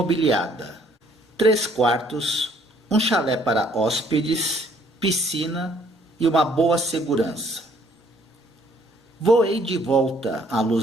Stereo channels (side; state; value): both; normal; correlation 0.63